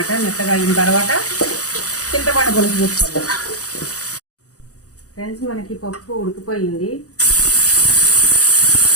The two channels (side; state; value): right; late; 0.66 ms